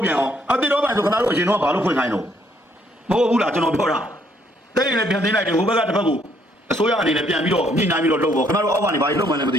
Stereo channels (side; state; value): both; normal; correlation 0.68